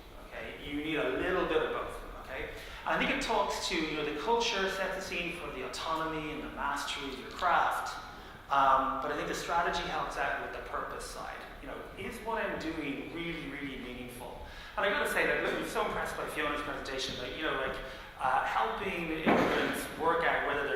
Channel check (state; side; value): identical; both; correlation 1.00